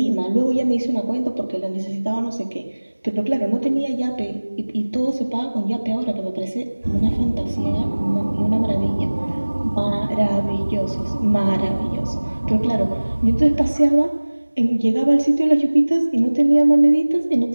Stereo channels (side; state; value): both; inverted; correlation -1.00